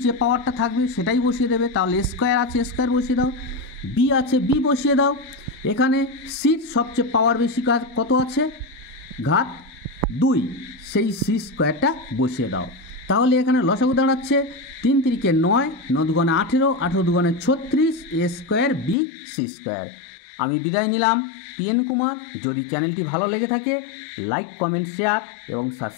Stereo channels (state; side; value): drops out; right; at 18.9 s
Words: যে পাওয়ারটা থাকবে সেটাই বসিয়ে দেবে। তাহলে স্কোয়ার আছে, স্কোয়ার বসিয়ে দাও। বি আছে, বি বসিয়ে দাও। এখানে সির সবচেয়ে পাওয়ার বেশি কত আছে, ঘাত 2, সেই সি স্কোয়ারটা বসিয়ে দাও। তাহলে এখানে লসাগু দাঁড়াচ্ছে 3 × 3 = 9, 9 × 2 = 18, 18 × 2 = 36, a square b c square. আমি বিদায় নিলাম, পিএন কুমার। যদি চ্যানেলটি ভালো লেগে থাকে লাইক, কমেন্ট, শেয়ার এবং